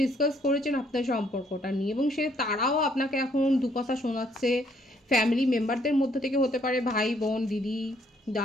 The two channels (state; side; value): normal; both; correlation 0.67